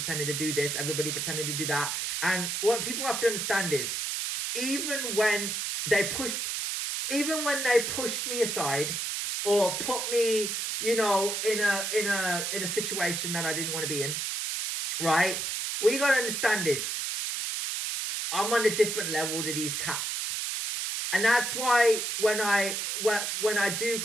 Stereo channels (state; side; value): noise; right; hiss, 2 dB below the sound